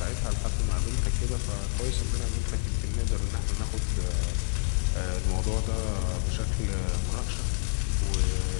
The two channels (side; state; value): right; silent; 59 dB below the other